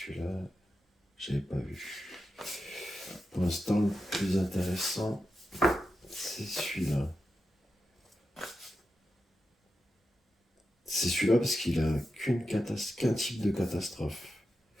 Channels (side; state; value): both; normal; correlation 0.89